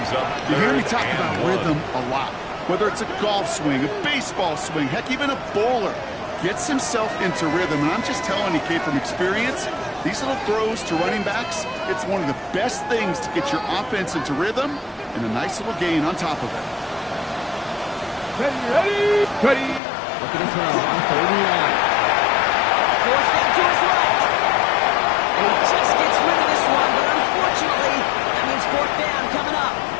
up You hear me talk third and about 1. rhythm a lot. Whether it's a golf swing, a baseball swing, heck, even a bowler gets himself into rhythm. And I'm just telling you, Kate, from experience, these little throws to running backs, it's one of the best things to get your offense into rhythm and a nice little gain on top of it. Ready. Looking to throw on third and 1. Forced down to his right. And he just gets rid of this one, but unfortunately, that means fourth down coming up.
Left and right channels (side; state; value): right; drops out; at 19.8 s